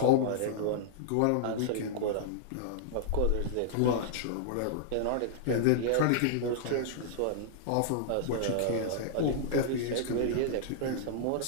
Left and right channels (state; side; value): different; both; correlation -0.01